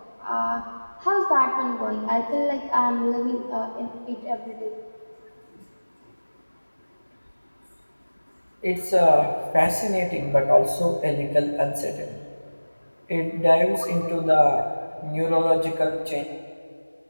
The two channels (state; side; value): inverted; both; correlation -1.00